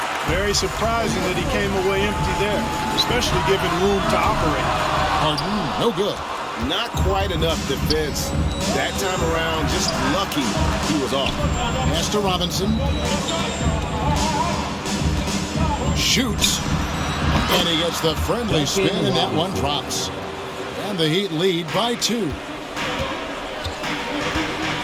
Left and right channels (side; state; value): both; identical; correlation 1.00